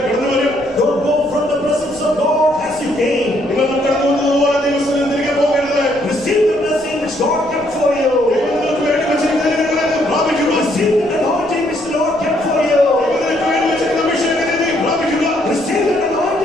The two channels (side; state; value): left; noise; rumble, 25 dB below the sound